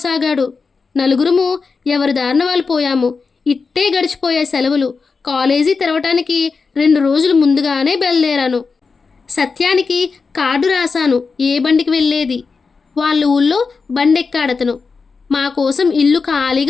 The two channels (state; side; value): quieter; right; 4.8 dB